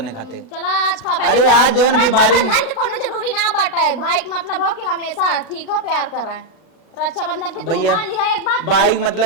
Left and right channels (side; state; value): right; late; 37 ms